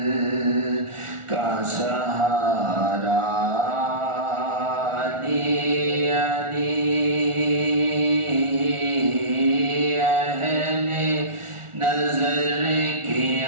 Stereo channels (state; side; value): late; left; 1.4 ms